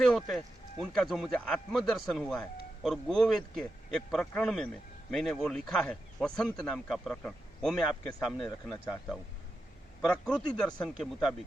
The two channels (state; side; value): normal; both; correlation 0.88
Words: होते हैं उनका जो मुझे आत्मदर्शन हुआ है, और गोवेद के एक प्रकरण में मैंने वो लिखा है, वसंत नाम का प्रकरण, वो मैं आपके सामने रखना चाहता हूँ। प्रकृति दर्शन के